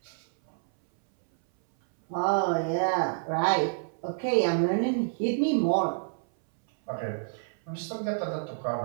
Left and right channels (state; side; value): silent; left; 59 dB below the other